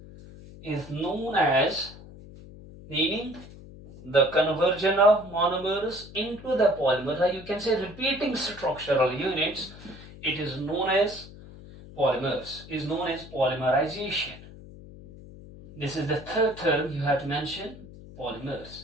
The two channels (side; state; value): left; noise; hum, 17 dB below the sound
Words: Meaning the conversion of monomers into the polymers, or you can say repeating structural units, it is known as polymers, is known as polymerization. This is the third term you have to mention,